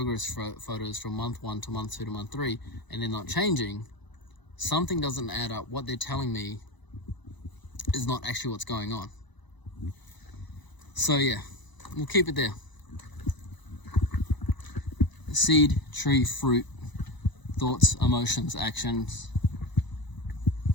photos from month 1 to month 2 to month 3, and they're not changing, something doesn't add up. What they're telling me is not actually what's going on. So yeah, we'll keep it there. Seed, tree, fruit, thoughts, emotions, actions.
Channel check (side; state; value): right; late; 1.0 ms